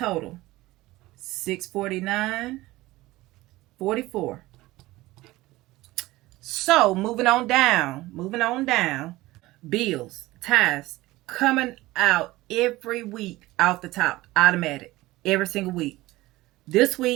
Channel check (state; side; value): quieter; left; 18.6 dB